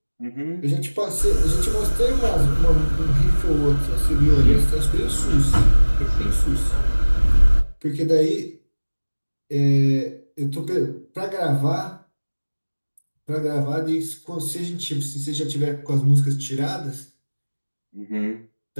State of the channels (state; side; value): inverted; both; correlation -1.00